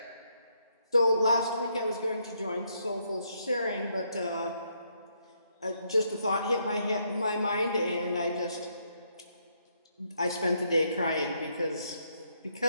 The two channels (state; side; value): inverted; both; correlation -0.75